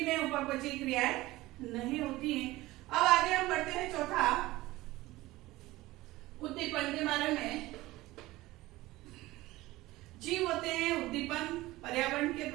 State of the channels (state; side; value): quieter; left; 18.5 dB